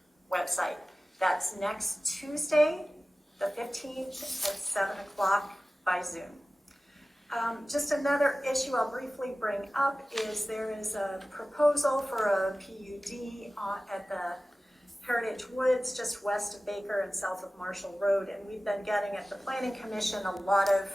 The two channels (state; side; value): normal; both; correlation 0.96